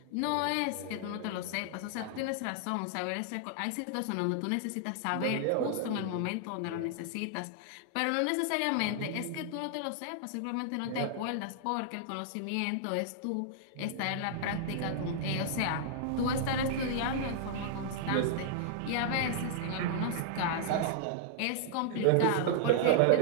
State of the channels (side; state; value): both; different; correlation -0.01